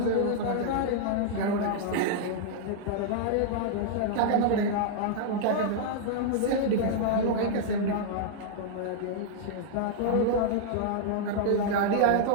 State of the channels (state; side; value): different; both; correlation -0.01